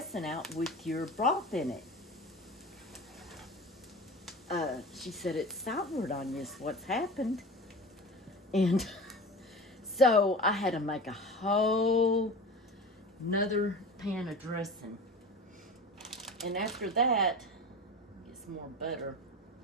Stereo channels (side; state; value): both; normal; correlation 0.33